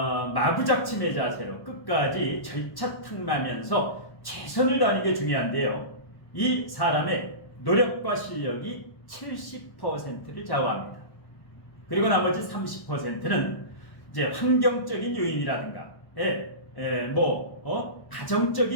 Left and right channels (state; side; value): late; right; 1.1 ms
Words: 자세로 끝까지 절차탕마하면서 최선을 다하는 게 중요한데요. 이 사람의 노력과 실력이 70%를 좌우합니다. 그리고 나머지 30%는 이제 환경적인 요인이라든가,